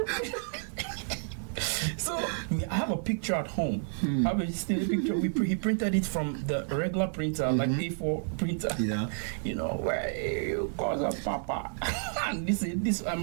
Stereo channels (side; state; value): left; silent; digital silence